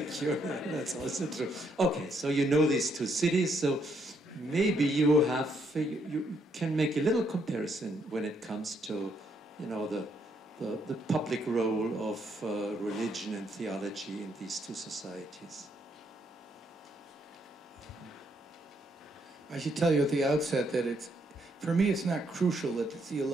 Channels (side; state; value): both; normal; correlation 0.73